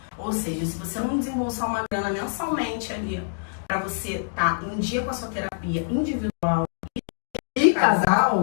Ou seja, se você não desembolsar uma grana mensalmente ali pra você estar em dia com a sua terapia individual e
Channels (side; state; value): right; silent; digital silence